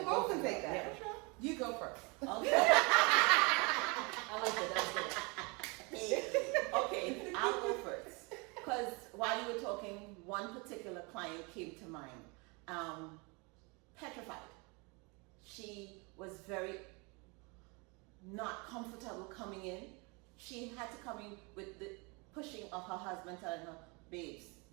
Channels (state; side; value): quieter; left; 29.6 dB